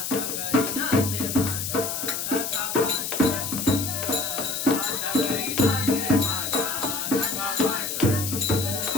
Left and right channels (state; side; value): noise; left; hiss, 3 dB below the sound